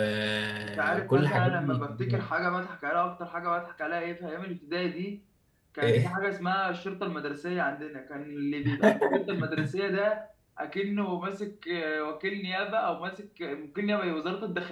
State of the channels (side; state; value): both; identical; correlation 1.00